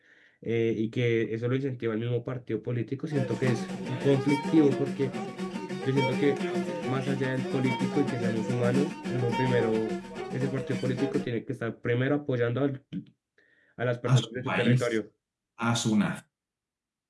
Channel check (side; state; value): both; identical; correlation 1.00